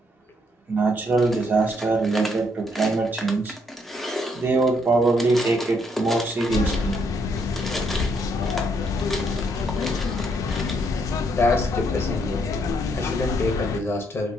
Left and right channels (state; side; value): normal; both; correlation 0.72